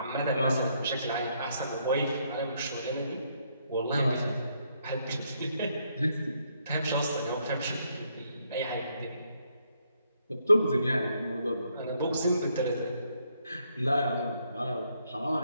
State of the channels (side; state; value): both; inverted; correlation -0.73